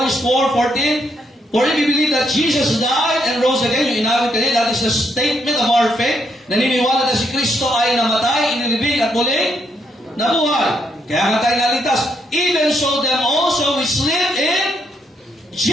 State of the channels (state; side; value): normal; both; correlation 0.76